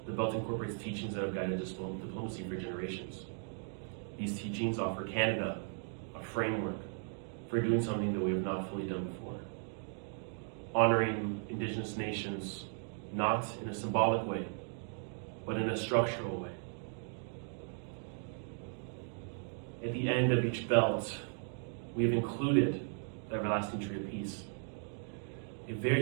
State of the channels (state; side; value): silent; left; 53 dB below the other